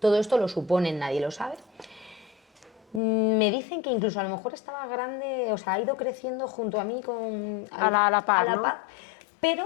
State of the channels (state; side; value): drops out; right; at 3.0 s